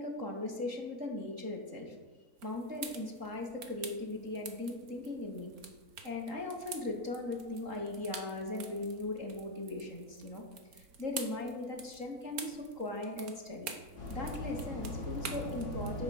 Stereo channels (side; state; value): left; late; 4.4 ms